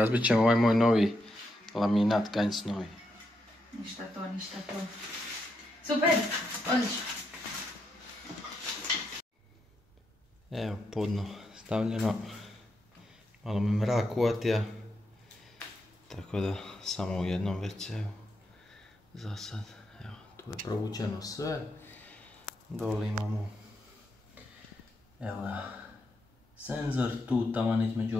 ćemo ovaj moj novi laminat Ganj Snowy. Ništa to. Super. Odlično. Evo podno stavljeno. Malo me mrak uvatija. Tako da samo u jednom WC-u. Za sad. Evo, tu je provučeno sve. Dole imamo evo ga, senzor, tu taman između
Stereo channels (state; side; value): normal; both; correlation 0.81